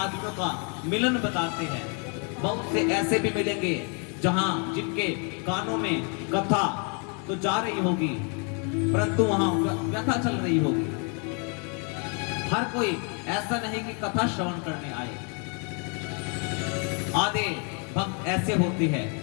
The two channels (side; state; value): right; quieter; 37.5 dB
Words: का मिलन बताते हैं, बहुत से ऐसे भी मिलेंगे जहां जिनके कानों में कथा तो जा रही होगी, परंतु वहां व्यथा चल रही होगी। हर कोई ऐसा नहीं कि कथा श्रवण करने आए। आधे भक्त ऐसे होते हैं